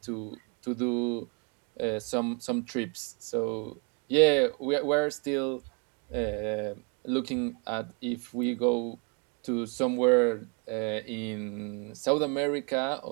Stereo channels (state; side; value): quieter; left; 35.2 dB